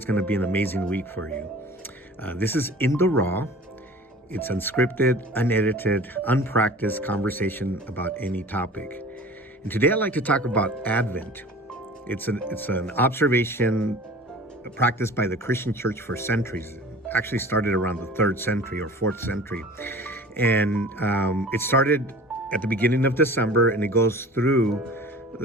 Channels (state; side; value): normal; both; correlation 0.42